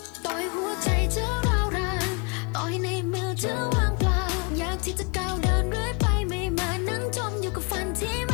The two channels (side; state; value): right; quieter; 32.4 dB